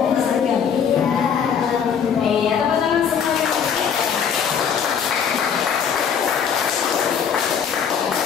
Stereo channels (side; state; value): right; quieter; 7.4 dB